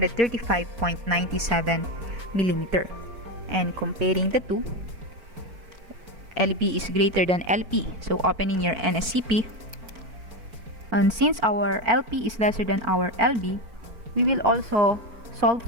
millimeter. And comparing the two, LB is greater than LP. So opening your NSCP, and since our LP is lesser than our LB, we will also solve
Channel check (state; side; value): late; left; 4.4 ms